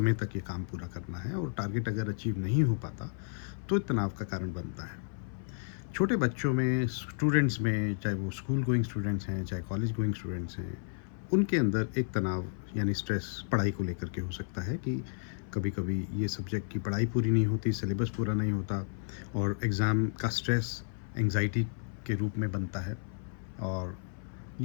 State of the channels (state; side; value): silent; right; 55 dB below the other